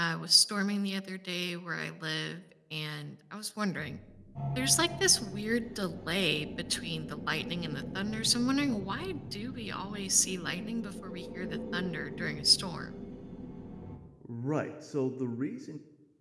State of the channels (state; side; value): identical; both; correlation 1.00